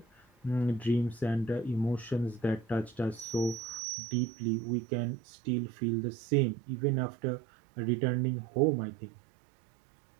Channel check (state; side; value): drops out; left; at 3.8 s